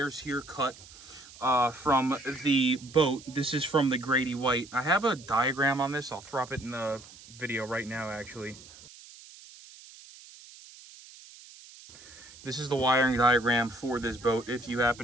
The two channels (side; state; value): right; noise; hiss, 20 dB below the sound